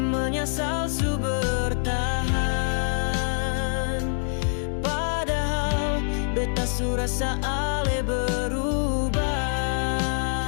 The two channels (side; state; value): right; silent; digital silence